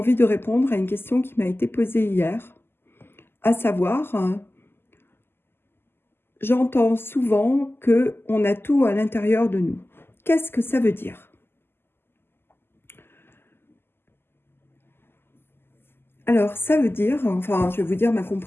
de répondre à une question qui m'a été posée hier, à savoir, j'entends souvent qu'on a tout à l'intérieur de nous. Qu'est-ce que ça veut dire ? Alors, ça veut dire, enfin, je vais vous dire ma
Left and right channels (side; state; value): right; late; 0.11 ms